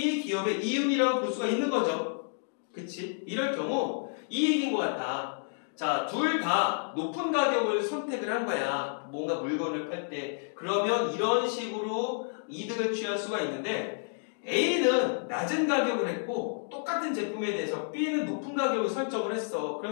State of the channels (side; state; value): right; silent; digital silence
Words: 이윤이라고 볼 수가 있는 거죠. 그치? 이럴 경우 이 얘기인 것 같다. 자, 둘 다 높은 가격을 선택을 한 거야. 뭔가 물건을 팔 때. 그러면 이런 식으로 이득을 취할 수가 있는데 A는 낮은 가격을 했고 똑같은 제품에 대해서 B는 높은 가격을 설정을 했어.